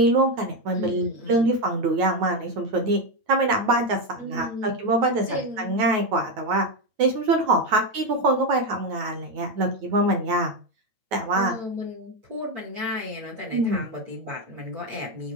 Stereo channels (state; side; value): late; left; 9.3 ms